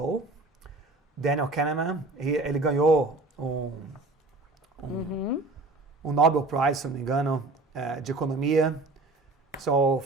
Daniel Kahneman. Ele ganhou um Nobel Prize, se não me engano, de economia. So,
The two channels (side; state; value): left; quieter; 3.1 dB